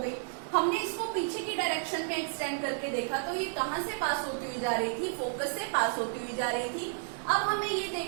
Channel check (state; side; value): silent; left; digital silence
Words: गई। हमने इसको पीछे की डायरेक्शन में एक्सटेंड करके देखा तो ये कहाँ से पास होती हुई जा रही थी, फोकस से पास होती हुई जा रही थी। अब हमें ये